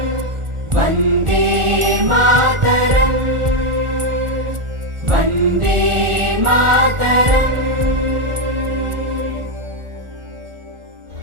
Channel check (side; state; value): left; late; 1.4 ms